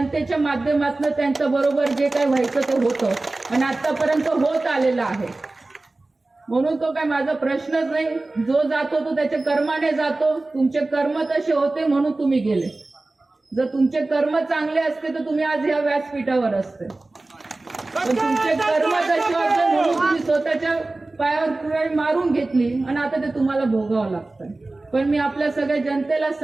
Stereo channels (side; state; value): left; quieter; 3.1 dB